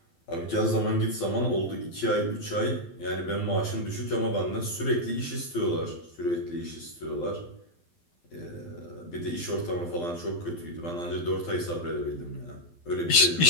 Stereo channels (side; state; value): right; late; 12 ms